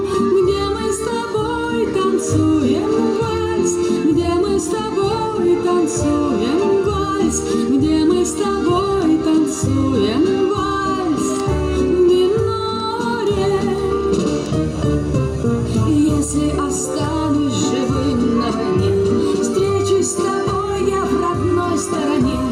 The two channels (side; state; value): both; identical; correlation 1.00